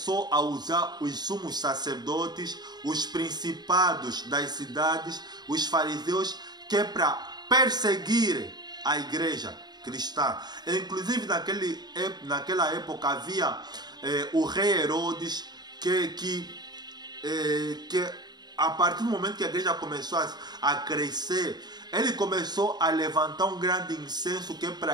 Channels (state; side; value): late; left; 0.20 ms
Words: a usar os sumos sacerdotes, os principados das cidades, os fariseus, que é para perseguir a igreja cristã. Inclusive, naquela época havia o rei Herodes, que a partir do momento que a igreja começou a crescer, ele começou a levantar um grande incenso que é